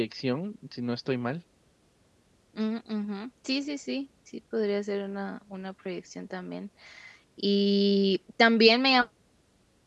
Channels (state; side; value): identical; both; correlation 1.00